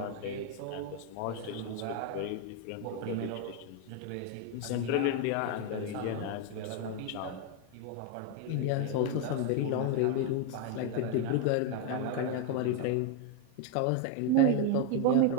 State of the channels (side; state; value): both; different; correlation 0.01